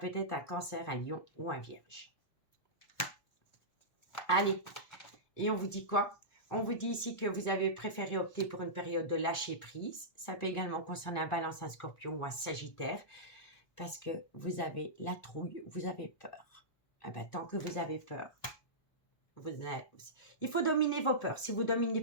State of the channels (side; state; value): right; late; 1.5 ms